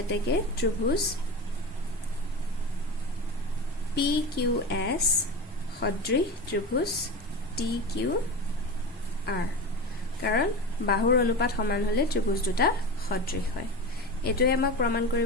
এতেকে ত্ৰিভুজ PQS সদৃশ ত্ৰিভুজ TQR কাৰণ বাহুৰ অনুপাত সমান হলে ত্ৰিভুজ দুটা সদৃশ হয় এটোই আমাক প্ৰমাণ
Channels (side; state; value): both; normal; correlation 0.26